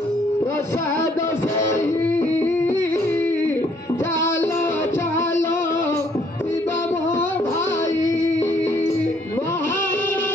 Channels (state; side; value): normal; both; correlation 0.66